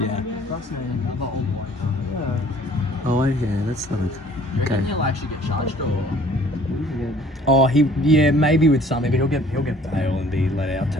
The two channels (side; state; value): both; normal; correlation 0.55